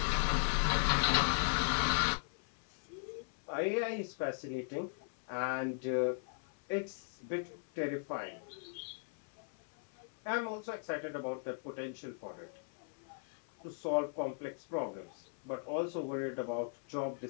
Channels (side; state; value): right; silent; 52 dB below the other